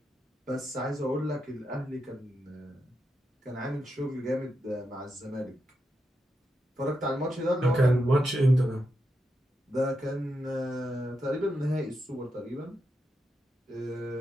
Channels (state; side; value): normal; both; correlation 0.85